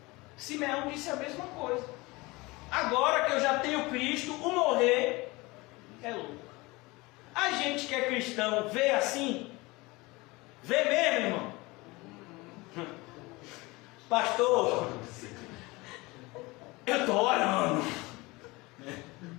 Simeão disse a mesma coisa. Agora que eu já tenho Cristo, o morrer é lucro. A gente que é cristão vê assim? Vê mesmo, irmão? Pastor, eu estou orando.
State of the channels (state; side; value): quieter; right; 23.1 dB